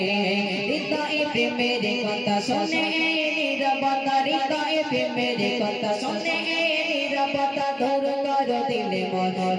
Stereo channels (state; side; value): identical; both; correlation 1.00